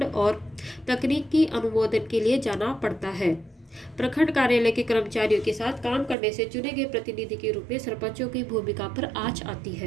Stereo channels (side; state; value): left; drops out; at 6.2 s